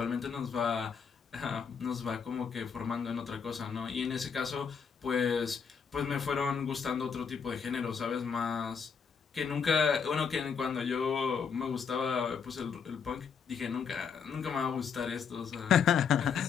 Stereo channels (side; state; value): right; quieter; 6.4 dB